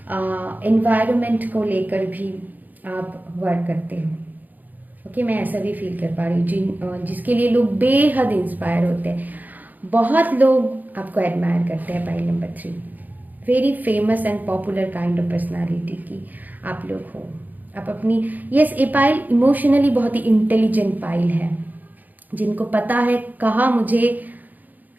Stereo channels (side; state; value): left; late; 0.083 ms